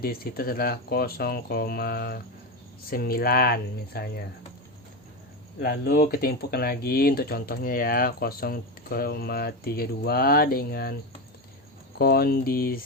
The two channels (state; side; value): normal; both; correlation 0.15